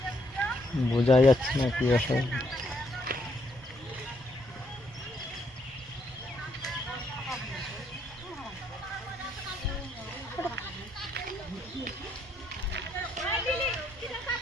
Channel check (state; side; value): normal; both; correlation 0.73